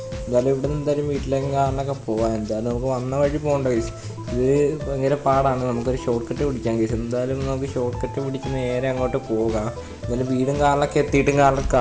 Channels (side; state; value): both; identical; correlation 1.00